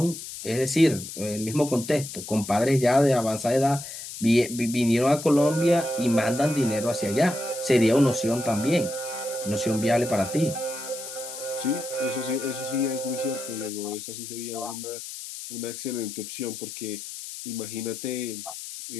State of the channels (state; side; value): noise; left; hiss, 10 dB below the sound